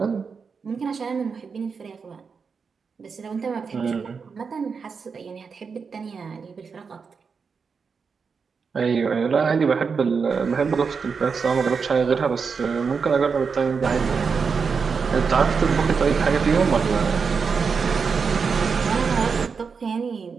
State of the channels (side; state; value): left; quieter; 5.5 dB